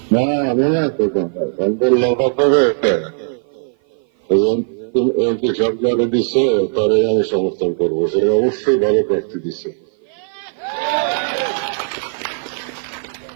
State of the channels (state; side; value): silent; left; 55 dB below the other